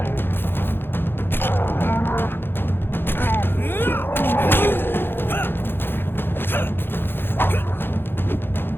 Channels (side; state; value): right; late; 0.10 ms